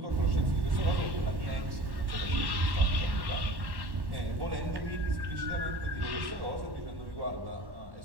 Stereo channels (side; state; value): left; late; 1.1 ms